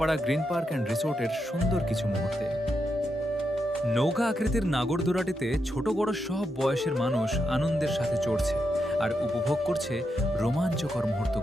গ্রিন পার্ক অ্যান্ড রিসোর্টের সুন্দর কিছু মুহূর্তে। নৌকা আকৃতির নাগরদোলাটিতে ছোট বড় সব বয়সের মানুষ আনন্দের সাথে চড়ছে আর উপভোগ করছে রোমাঞ্চকর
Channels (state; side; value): normal; both; correlation 0.84